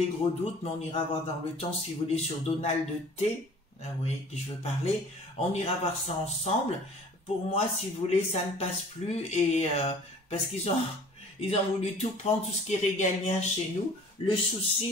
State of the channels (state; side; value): normal; both; correlation 0.48